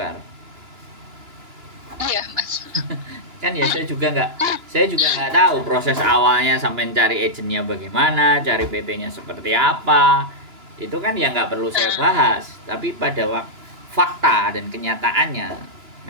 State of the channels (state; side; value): late; left; 2.9 ms